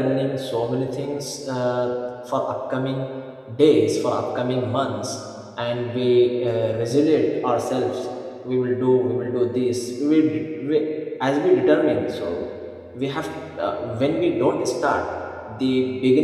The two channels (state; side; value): identical; both; correlation 1.00